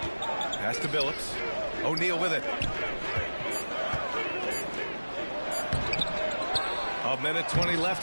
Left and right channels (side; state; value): both; inverted; correlation -1.00